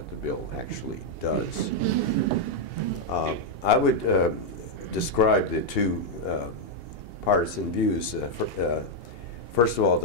the bill actually does. I would describe the two partisan views. First of all,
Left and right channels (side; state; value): right; late; 2.8 ms